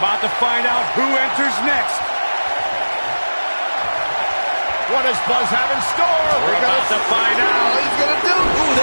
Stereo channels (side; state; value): both; inverted; correlation -1.00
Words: about to find out who enters next. What does Buzz have in store? We're about to find out. What he's going to do? Ooh,